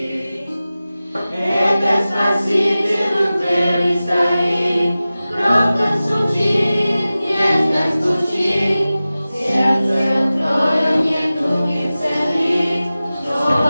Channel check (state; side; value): inverted; both; correlation -0.96